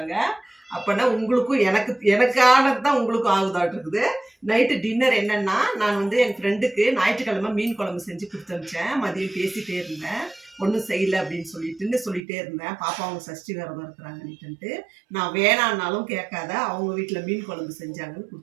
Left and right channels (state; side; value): drops out; left; at 12.2 s